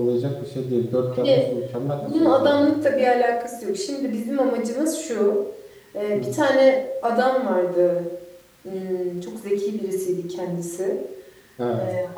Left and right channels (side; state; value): both; identical; correlation 1.00